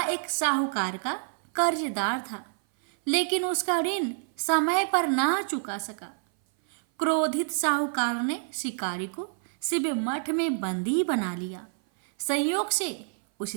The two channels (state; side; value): silent; left; 57 dB below the other